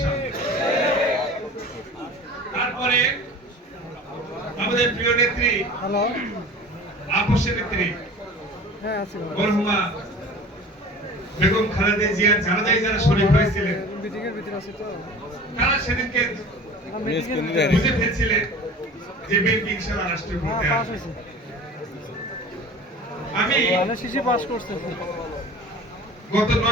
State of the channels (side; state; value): both; normal; correlation 0.40